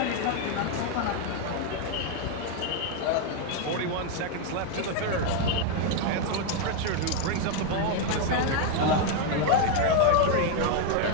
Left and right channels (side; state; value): both; different; correlation 0.01